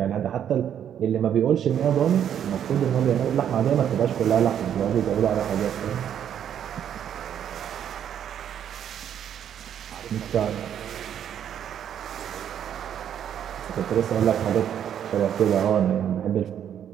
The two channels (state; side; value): quieter; left; 9.5 dB